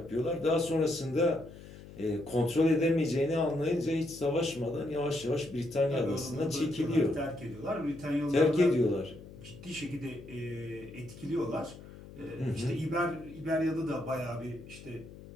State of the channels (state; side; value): noise; left; hum, 17 dB below the sound